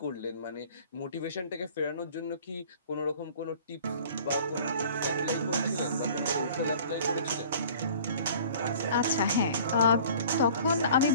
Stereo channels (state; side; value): inverted; both; correlation -0.48